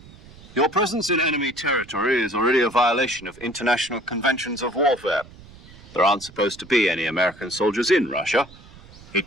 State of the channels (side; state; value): right; noise; rumble, 21 dB below the sound